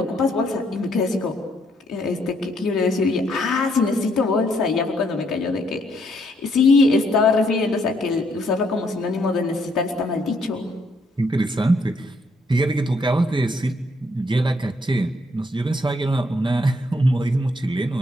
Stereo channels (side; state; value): both; normal; correlation 0.71